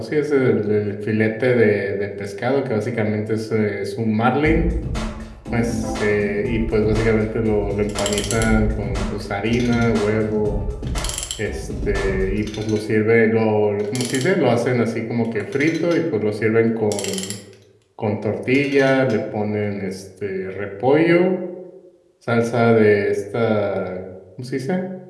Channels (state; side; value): identical; both; correlation 1.00